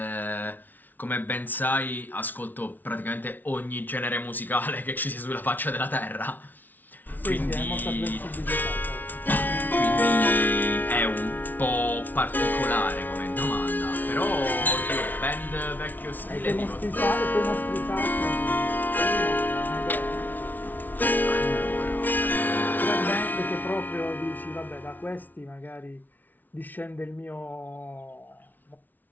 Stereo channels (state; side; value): late; right; 0.083 ms